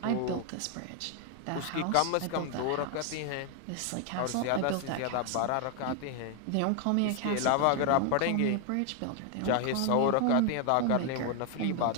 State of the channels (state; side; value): different; both; correlation 0.00